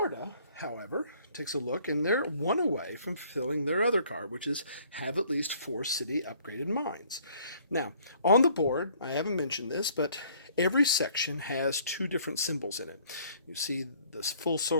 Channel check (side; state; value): both; inverted; correlation -0.59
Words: however, takes a look, and they're 1 away from fulfilling their other card, which is have at least 4 city upgraded mines. Now, on the board, I haven't mentioned this, but every section has 2 different symbols in it. You see this full